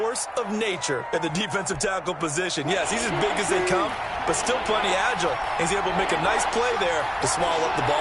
of nature at the defensive tackle position. Yes, he's as big as they come, but still plenty agile. He's able to make a nice play there to swallow up the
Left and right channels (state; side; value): identical; both; correlation 1.00